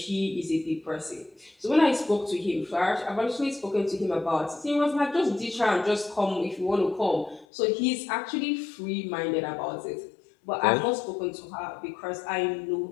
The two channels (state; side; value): drops out; right; at 7.5 s